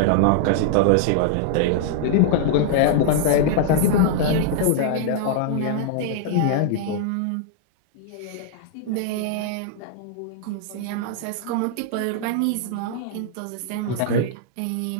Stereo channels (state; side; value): different; both; correlation -0.01